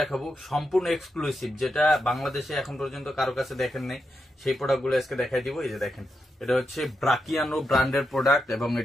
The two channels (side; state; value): both; normal; correlation 0.85